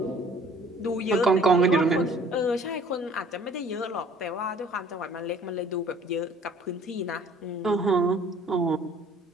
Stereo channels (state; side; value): normal; both; correlation 0.54